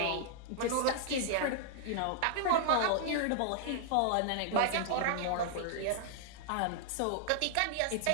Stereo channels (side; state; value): both; different; correlation -0.01